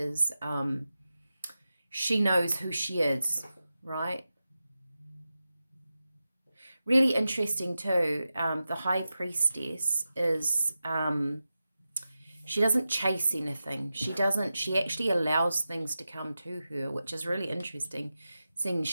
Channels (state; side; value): inverted; both; correlation -0.92